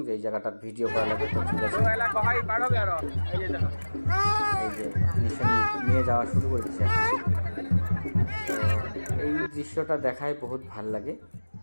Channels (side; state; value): both; inverted; correlation -1.00